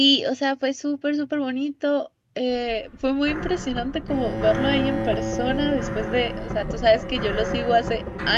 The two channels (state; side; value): identical; both; correlation 1.00